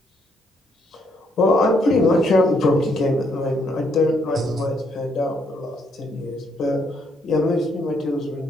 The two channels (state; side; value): normal; both; correlation 0.72